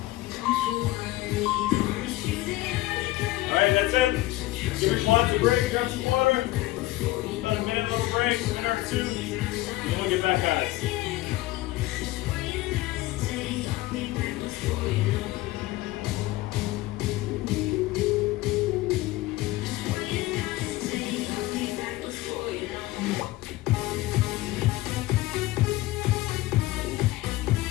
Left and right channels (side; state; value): right; quieter; 17.8 dB